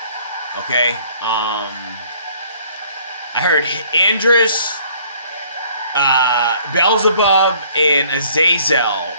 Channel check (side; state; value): both; inverted; correlation -0.58